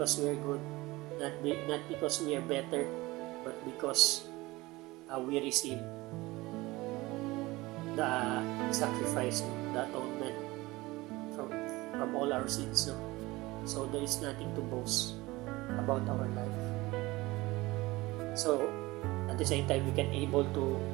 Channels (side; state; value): left; quieter; 20.7 dB